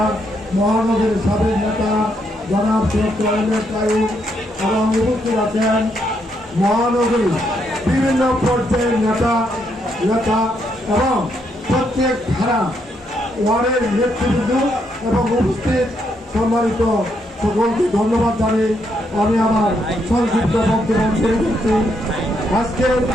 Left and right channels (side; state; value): both; normal; correlation 0.76